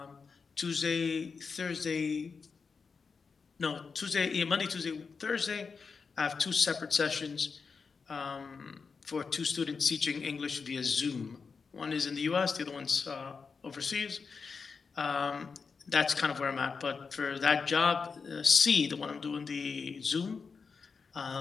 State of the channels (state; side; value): quieter; right; 5.2 dB